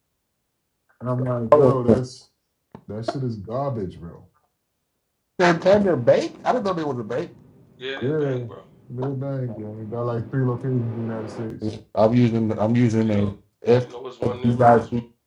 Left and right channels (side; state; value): both; identical; correlation 1.00